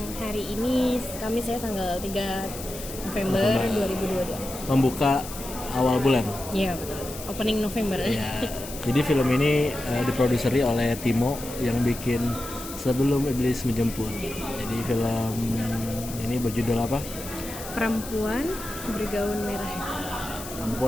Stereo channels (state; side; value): noise; left; hiss, 12 dB below the sound